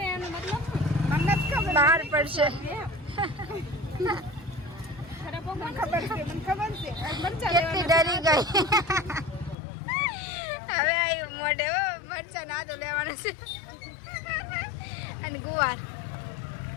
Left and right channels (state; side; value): drops out; right; at 9.6 s